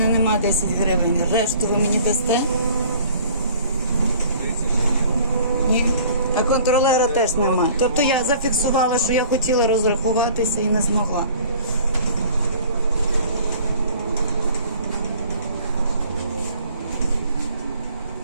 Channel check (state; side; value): inverted; both; correlation -0.51